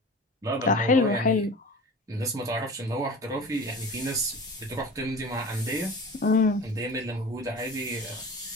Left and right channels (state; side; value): normal; both; correlation 0.36